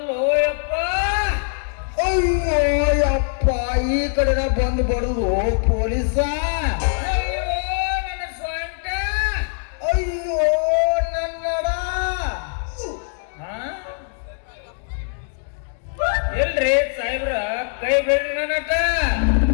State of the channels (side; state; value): right; silent; digital silence